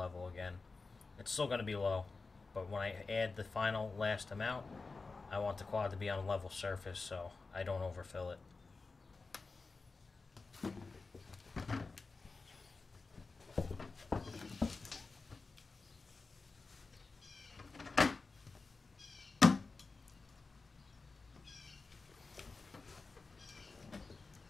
again. It's still going to be low, but when I add the final last amount, I want the quad to be on a level surface so I don't overfill it.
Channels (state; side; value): quieter; right; 4.0 dB